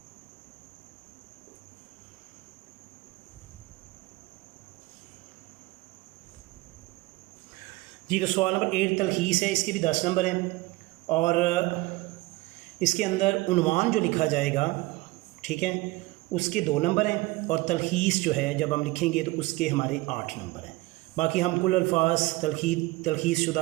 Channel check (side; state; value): left; quieter; 21.1 dB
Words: जी, तो सवाल नंबर 8 तलखीस है, इसके भी 10 नंबर हैं और इसके अंदर उन्वान जो लिखा जाएगा, ठीक है, उसके 2 नंबर हैं और तलखीस जो है जब हम लिखेंगे तो उसके हमारे 8 नंबर हैं। बाकी हम कुल अल्फाज, तलखीस शुदा